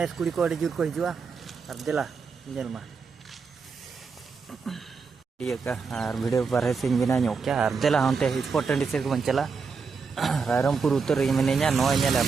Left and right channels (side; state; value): left; quieter; 5.2 dB